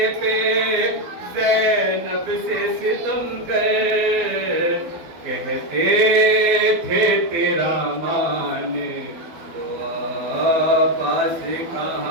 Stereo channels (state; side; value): late; left; 12 ms